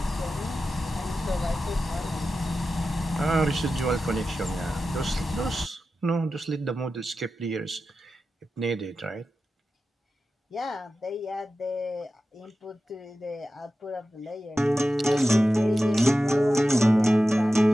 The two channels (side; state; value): both; normal; correlation 0.93